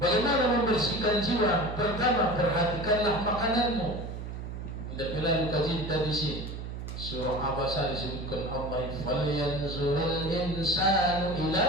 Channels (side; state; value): right; noise; hum, 7 dB below the sound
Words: membersihkan jiwa? Pertama, perhatikanlah makananmu. Tidak pernah kaji tadi sih. Surah Abasa disebutkan Allah, falyanzurul insanu